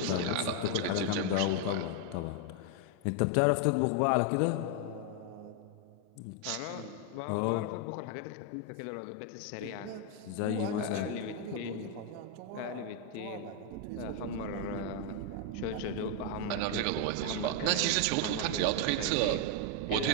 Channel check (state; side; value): different; both; correlation 0.01